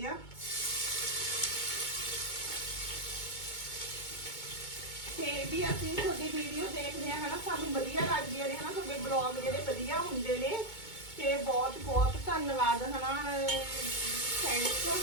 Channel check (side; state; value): right; late; 2.2 ms